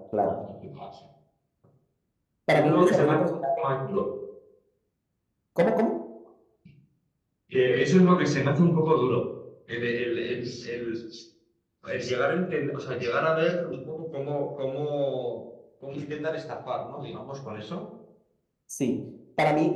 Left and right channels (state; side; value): identical; both; correlation 1.00